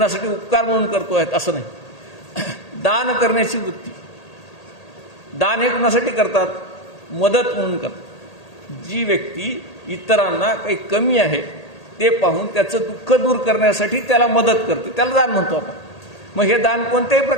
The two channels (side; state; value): right; late; 1.8 ms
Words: उपकार म्हणून करतो आहेत असं नाही. दान करण्याची वृत्ती. दान हे कुणासाठी करतात? मदत म्हणून करतात. जी व्यक्ती इतरांना काही कमी आहे ते पाहून त्याचं दुःख दूर करण्यासाठी त्याला मदत करते, त्याला दान म्हणतो आपण. मग हे दान कोणत्याही